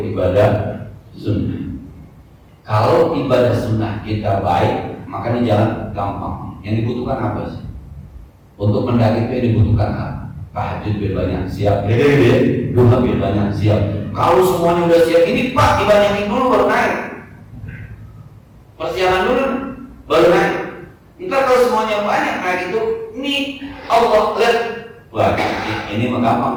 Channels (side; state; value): both; identical; correlation 1.00